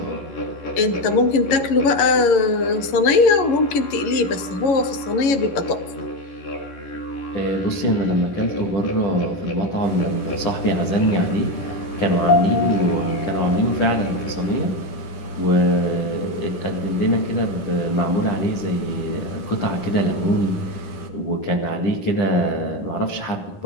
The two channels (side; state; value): right; late; 11 ms